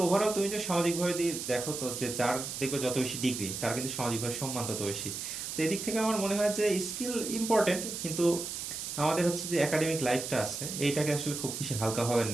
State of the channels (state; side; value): noise; right; hiss, 6 dB below the sound